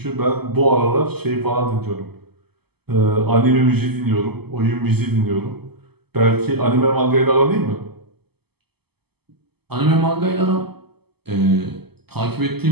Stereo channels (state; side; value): late; left; 0.97 ms